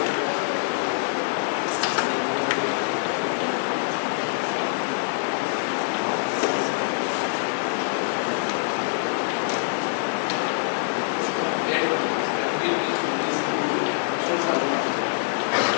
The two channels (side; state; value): right; silent; 62 dB below the other